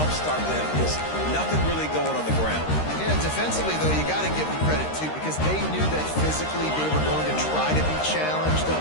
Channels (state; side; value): late; right; 13 ms